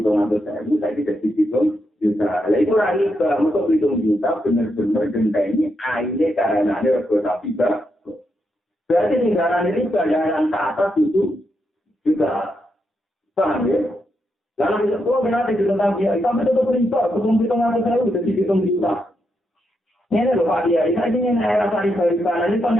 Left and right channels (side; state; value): both; normal; correlation 0.82